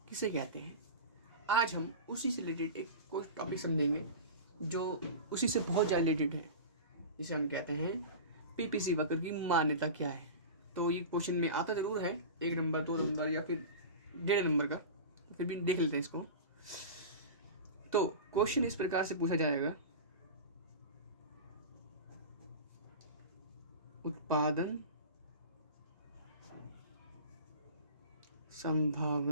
किसे कहते हैं। आज हम उसी से रिलेटेड एक कोई टॉपिक समझेंगे जो उसी से बहुत ज़्यादा रिलेटेड है, जिसे हम कहते हैं पीपीसी वाक्य की मान्यता क्या है। तो ये क्वेश्चन में आता ज़रूर है 1 नंबर 2 नंबर या फिर 1.5 नंबर का, फिर भी देख लेते हैं इसको। तो क्वेश्चन इस प्रकार से पूछा जाएगा, उत्पादन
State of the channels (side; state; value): both; inverted; correlation -0.31